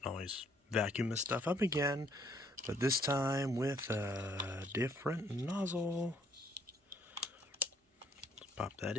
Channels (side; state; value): both; normal; correlation 0.65